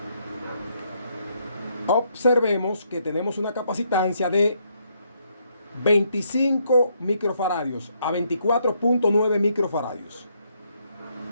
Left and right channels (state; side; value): inverted; both; correlation -0.73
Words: Observemos que tenemos una capacitancia de 25 microfaradios a 24.9 microfaradios.